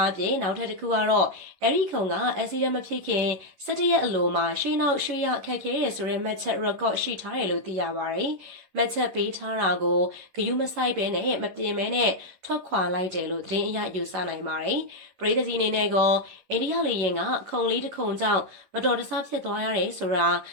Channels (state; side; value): late; left; 11 ms